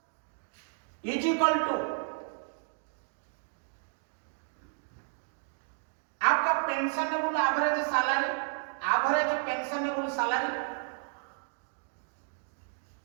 इज इक्वल टू आपका pensionable average salary, average pensionable salary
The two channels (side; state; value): left; silent; 56 dB below the other